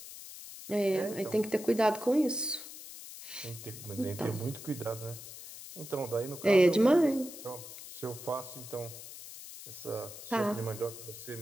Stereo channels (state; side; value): noise; left; hiss, 13 dB below the sound